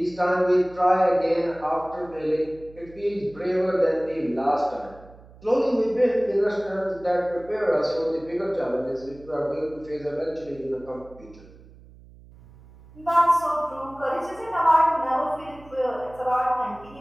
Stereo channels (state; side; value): noise; right; hum, 22 dB below the sound